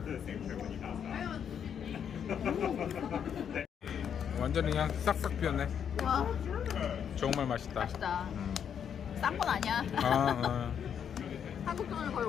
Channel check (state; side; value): quieter; right; 8.2 dB